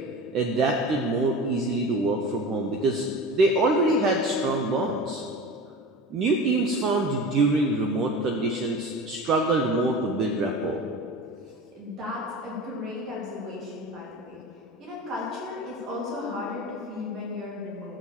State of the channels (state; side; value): normal; both; correlation 0.33